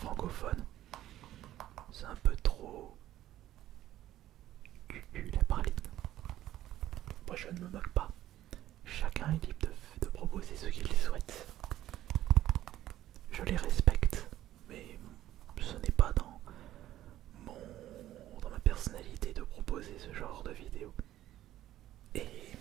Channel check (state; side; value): quieter; left; 13.4 dB